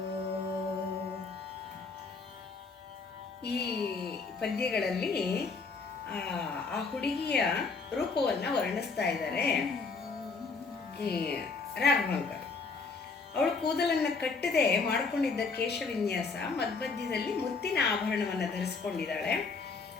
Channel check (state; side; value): quieter; right; 4.4 dB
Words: ಈ ಪದ್ಯಗಳಲ್ಲಿ ಆ ಹುಡುಗಿಯ ರೂಪವನ್ನು ವರ್ಣಿಸ್ತಾ ಇದ್ದಾರೆ ಈ ರಾಘವಾಂಕರ್. ಅವಳು ಕೂದಲನ್ನು ಕಟ್ಟದೆ ಮಾಡಿಕೊಂಡಿದ್ದ ಕೇಶವಿನ್ಯಾಸ ಮಧ್ಯದಲ್ಲಿ ಮುತ್ತಿನ ಆಭರಣವನ್ನು ಧರಿಸ್ಕೊಂಡಿದ್ದಾಳೆ.